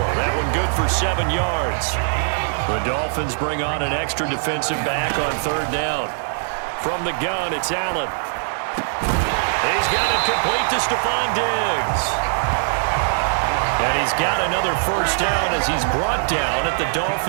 That one good for 7 yards. The Dolphins bring on an extra defensive back on 3rd down. From the gun, it's Allen. He's got it complete to Stephon Diggs. And he's got another first down as he's brought down at the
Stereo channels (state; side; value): silent; left; digital silence